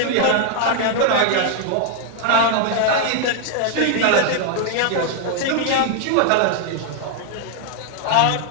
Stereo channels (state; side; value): different; both; correlation 0.00